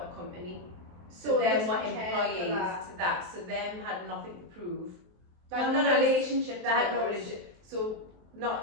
a company. So them were employees to that. So them had nothing to prove. Not a relationship. They had no relationship. So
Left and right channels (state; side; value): late; left; 23 ms